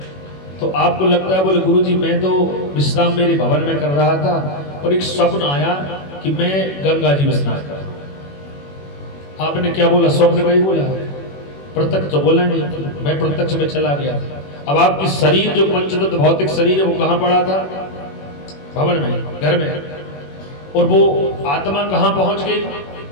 तो आपको लगता है बोले गुरुजी मैं तो विश्राम मेरे भवन में कर रहा था और एक स्वप्न आया कि मैं गंगा जी में स्नान कर रहा हूं। आपने क्या बोला? स्वप्न में ही बोला, प्रत्यक्ष तो बोला नहीं, मैं प्रत्यक्ष में चला गया था। अब आपकी शरीर जो पंचतत्व भौतिक शरीर है वो कहां पड़ा था? भवन में, घर में। और वो आत्मा कहां पहुंच गई?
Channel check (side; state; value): right; late; 21 ms